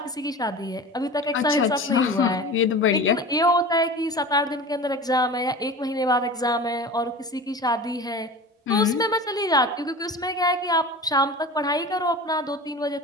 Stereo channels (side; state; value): both; normal; correlation 0.34